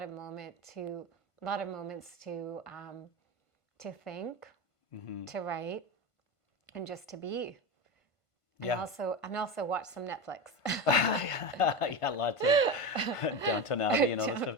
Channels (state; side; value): late; right; 1.5 ms